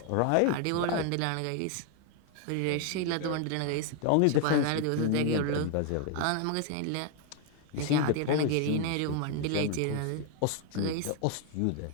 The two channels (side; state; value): both; different; correlation 0.01